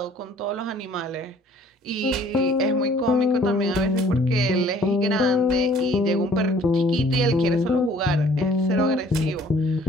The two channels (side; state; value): both; normal; correlation 0.56